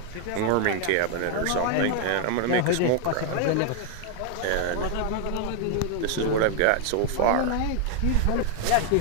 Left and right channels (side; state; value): both; different; correlation 0.00